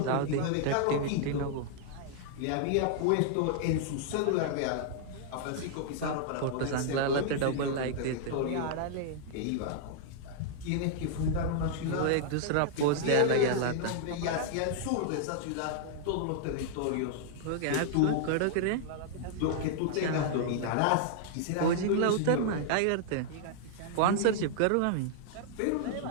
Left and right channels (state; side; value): different; both; correlation -0.01